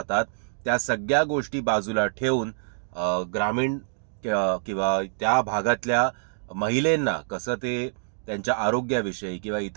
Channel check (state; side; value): silent; left; digital silence